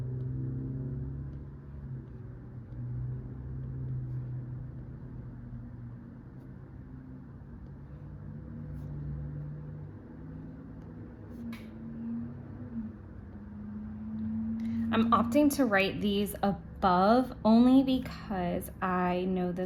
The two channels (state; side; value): identical; both; correlation 1.00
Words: I'm opting to write these above only because I know